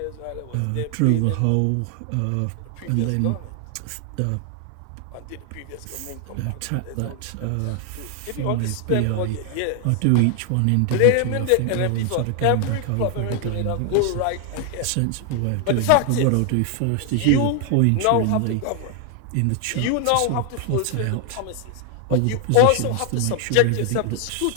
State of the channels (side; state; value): both; different; correlation 0.00